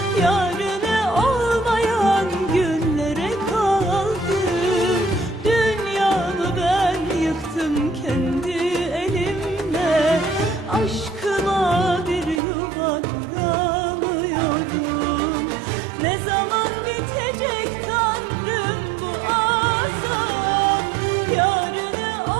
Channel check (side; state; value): left; drops out; at 12.4 s